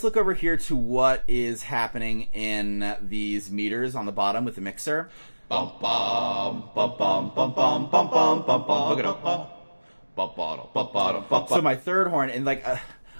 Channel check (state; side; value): inverted; both; correlation -1.00